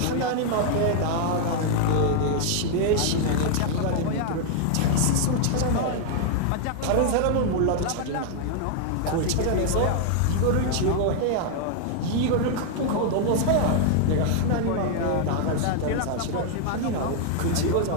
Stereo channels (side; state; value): both; different; correlation 0.00